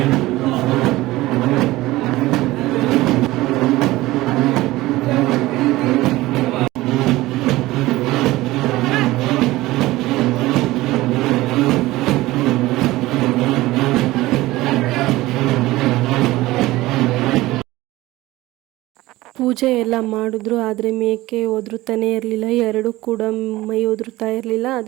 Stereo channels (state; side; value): quieter; left; 18.1 dB